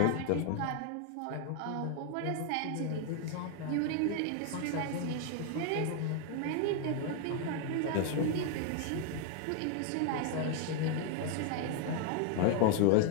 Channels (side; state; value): both; different; correlation 0.00